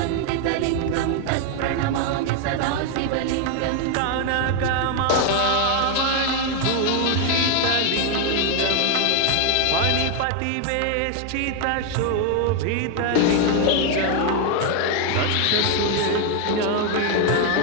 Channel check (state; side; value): different; both; correlation 0.01